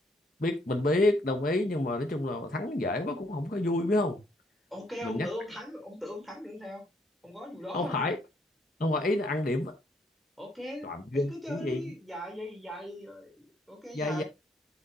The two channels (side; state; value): both; normal; correlation 0.70